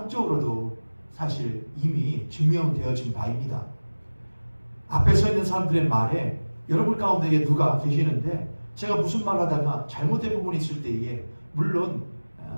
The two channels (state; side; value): inverted; both; correlation -1.00